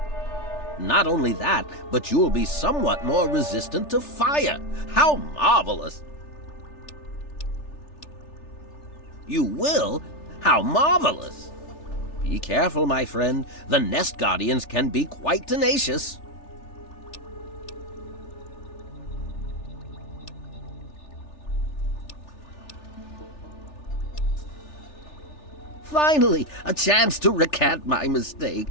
Not only that, but you'll be somewhat more resistant to fire. How marvelous! You will? How marvelous! Be careful, my friend. The nest guardians can be quite tenacious. Finally, a chance to recant my mistake.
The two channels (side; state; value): right; late; 3.4 ms